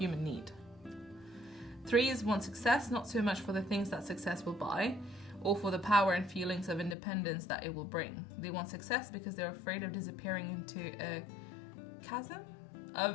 need. 3s want success not so much for the things that success will buy, or for the power and feelings of independence that it will bring. They want success because they're afraid of disappearing into a chasm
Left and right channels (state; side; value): drops out; right; at 7.0 s